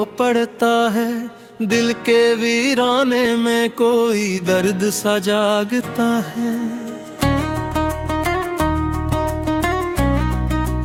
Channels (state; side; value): identical; both; correlation 1.00